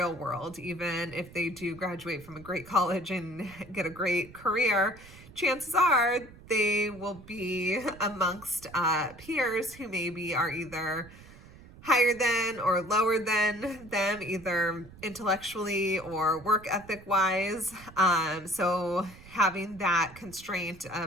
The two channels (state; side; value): noise; right; rumble, 20 dB below the sound